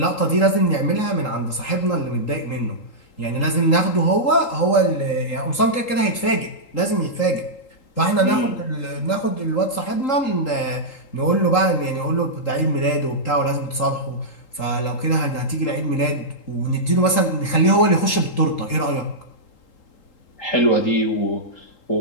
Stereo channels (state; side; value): late; right; 3.8 ms